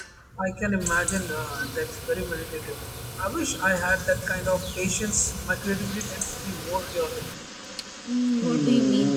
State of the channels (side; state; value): both; identical; correlation 1.00